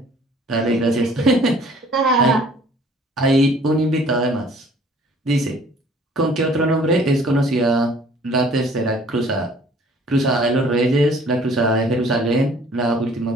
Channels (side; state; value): both; normal; correlation 0.54